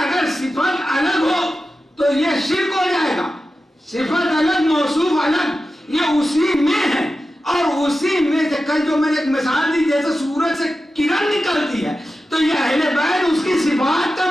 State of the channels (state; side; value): normal; both; correlation 0.92